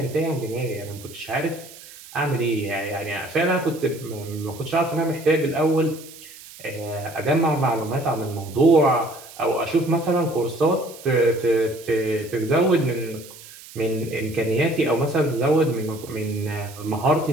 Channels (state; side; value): noise; right; hiss, 18 dB below the sound